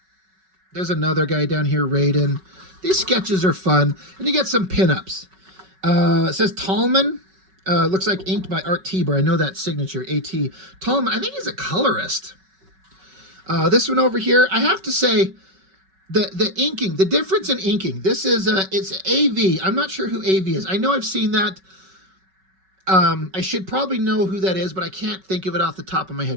There's another guy down here, Raiden. These sketches are fun. And you get some pinups. It says Tallman. Looks like inked by Art Tieber. I know that signature, A.T. Tallman, I think he's a colorist. This one over here, I have to say, the inking, the difference in inking. This is it's AV. I'm not sure who AV is. I know I've seen that. I should probably know who that is, but I can't think of it off the top of my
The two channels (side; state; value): left; late; 5.3 ms